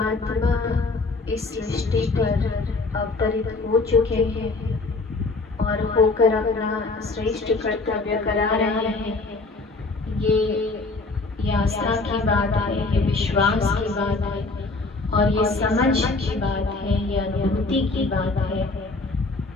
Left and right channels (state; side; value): quieter; right; 3.6 dB